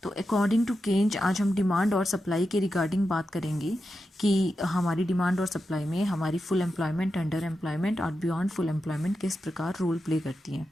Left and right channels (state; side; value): normal; both; correlation 0.89